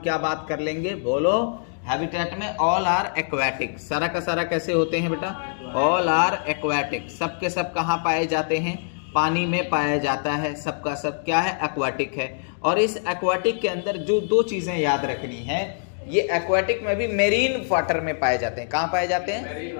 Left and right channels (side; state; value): right; silent; digital silence